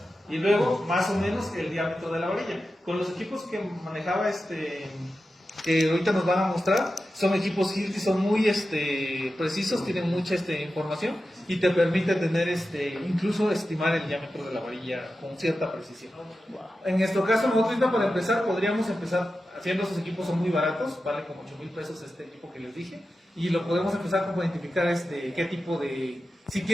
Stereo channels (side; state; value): both; normal; correlation 0.92